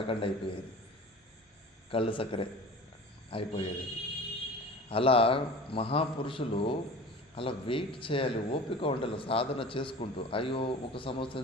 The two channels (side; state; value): both; normal; correlation 0.38